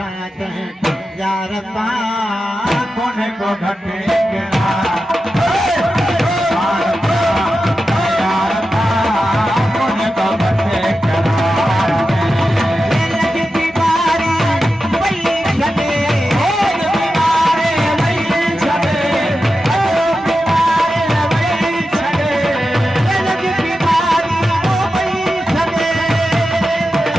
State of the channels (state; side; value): normal; both; correlation 0.91